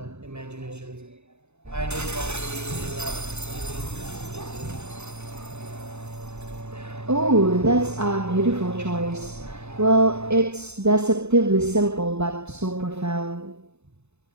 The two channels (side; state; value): left; late; 0.81 ms